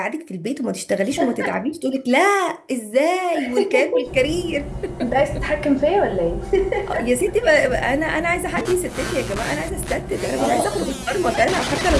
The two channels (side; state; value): both; identical; correlation 1.00